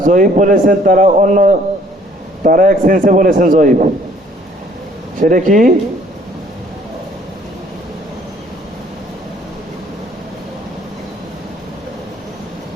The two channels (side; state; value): both; normal; correlation 0.59